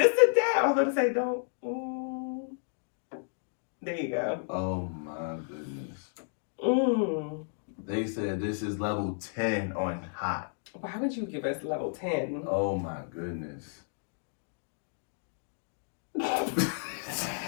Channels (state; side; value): silent; right; digital silence